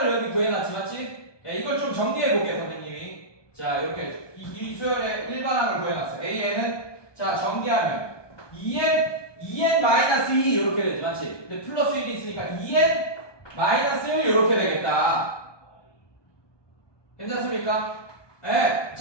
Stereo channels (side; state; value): right; late; 1.2 ms